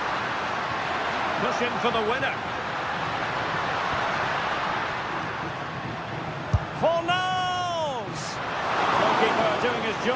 Pushing for the winner. Fornals! Goalkeeper doing his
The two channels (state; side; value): identical; both; correlation 1.00